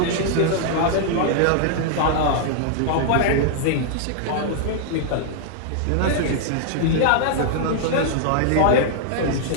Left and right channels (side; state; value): both; different; correlation -0.01